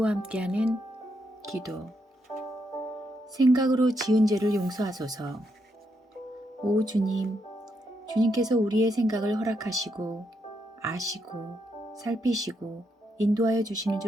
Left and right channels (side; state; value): both; normal; correlation 0.79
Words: 함께하는 기도. 생각으로 지은 죄를 용서하소서. 오 주님, 주님께서 우리의 생각을 허락하시고 아시고 살피시고 인도하여 주시는